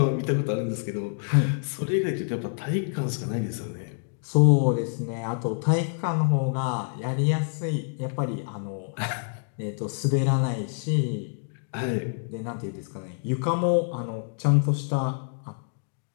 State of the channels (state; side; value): silent; right; digital silence